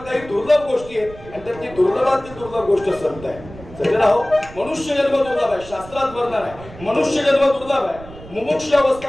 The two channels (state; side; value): noise; right; rumble, 17 dB below the sound